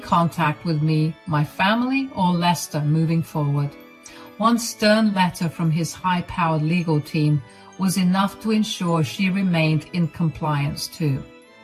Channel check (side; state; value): both; identical; correlation 1.00